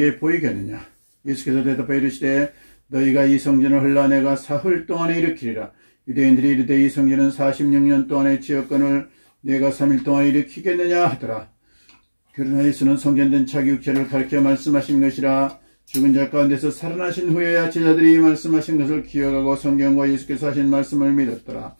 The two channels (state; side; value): inverted; both; correlation -1.00